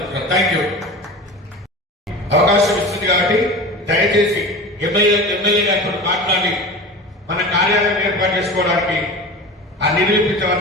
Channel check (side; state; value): both; normal; correlation 0.32